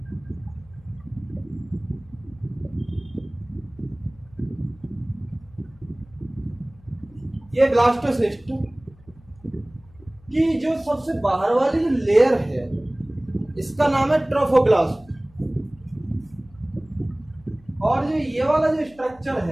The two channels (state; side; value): noise; left; hum, 26 dB below the sound